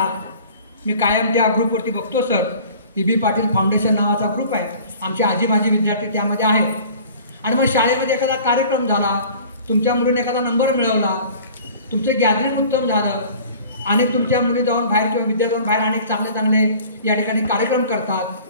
मी कायम त्या ग्रुपवरती बघतो सर, E.B. पाटील फाउंडेशन नावाचा ग्रुप आहे, आमचे आजी माजी विद्यार्थी त्यामध्ये आहेत. आणि मग शाळेमध्ये एखादा कार्यक्रम झाला, तुमच्या मुलीने एखादा नंबर मिळवला, तुमचं गॅदरिंग उत्तम झालं आणि तुमच्या मुली जाऊन बाहेर किंवा विद्यार्थी जाऊन बाहेर अनेक चांगले चांगले या ठिकाणी कार्यक्रम करतात,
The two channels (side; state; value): both; inverted; correlation -0.46